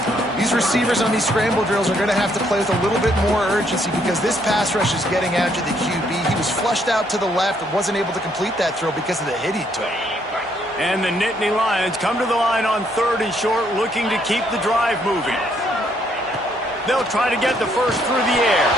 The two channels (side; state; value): both; normal; correlation 0.70